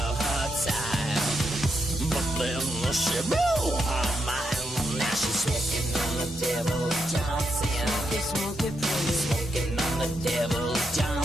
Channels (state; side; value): normal; both; correlation 0.82